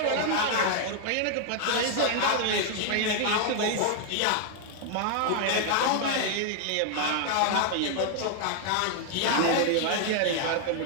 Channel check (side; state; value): both; different; correlation 0.00